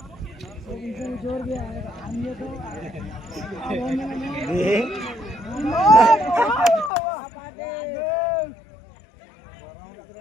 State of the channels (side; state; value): right; drops out; at 6.9 s